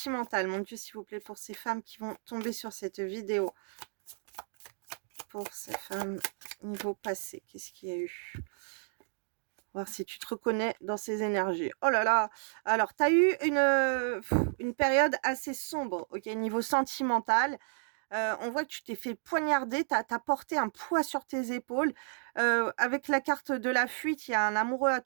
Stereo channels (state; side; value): silent; left; digital silence